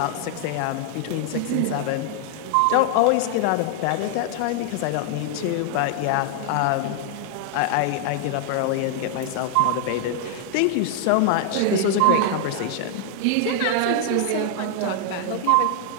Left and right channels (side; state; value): both; different; correlation 0.00